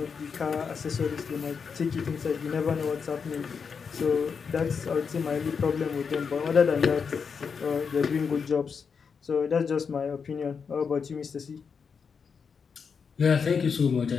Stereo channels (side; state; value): right; quieter; 5.9 dB